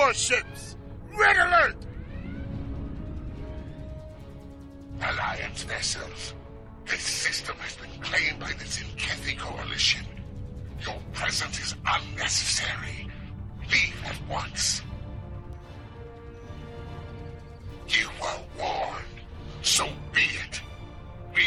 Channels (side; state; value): both; identical; correlation 1.00